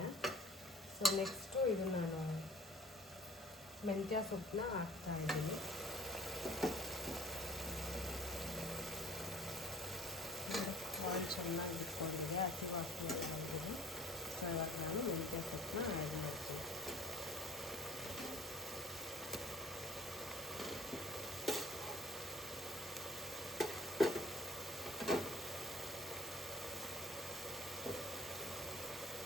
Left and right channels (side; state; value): both; normal; correlation 0.52